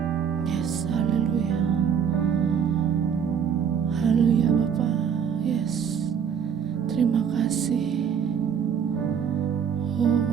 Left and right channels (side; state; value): left; quieter; 7.5 dB